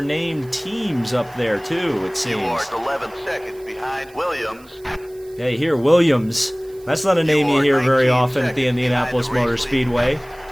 teams up there too, it seems. You are 11 seconds behind Williams. Yeah, you hear Williams. That's not a name you hear very often at the Indianapolis Motor Speedway.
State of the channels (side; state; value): right; noise; hiss, 27 dB below the sound